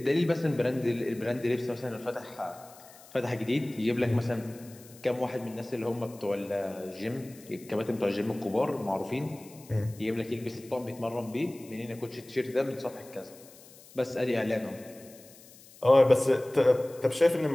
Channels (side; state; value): left; noise; hiss, 22 dB below the sound